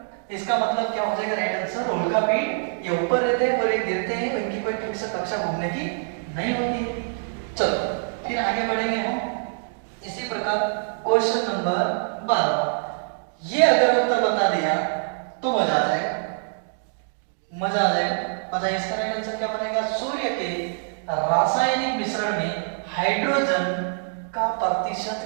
इसका मतलब क्या हो जाएगा राइट आंसर? उल्का पिंड ये ऊपर रहते हैं और ये गिरते हैं, इनकी कोई फिक्स कक्षा घूमने की नहीं होती है। चलो फिर आगे बढ़ेंगे हम इसी प्रकार। Question number 12। ये अगर उत्तर बता दिया तो मजा आ जाएगा, मजा आ जाएगा। बताइए इसका राइट आंसर क्या बनेगा? सूर्य के रासायनिक मिश्रण में हाइड्रोजन का प्रतिशत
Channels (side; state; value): left; silent; digital silence